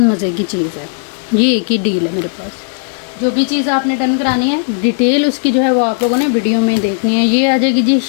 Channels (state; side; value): silent; right; digital silence